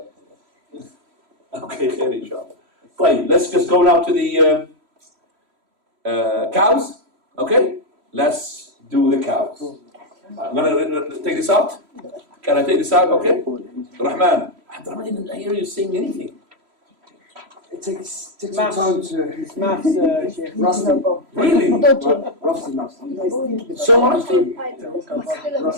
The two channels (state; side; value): late; left; 3.0 ms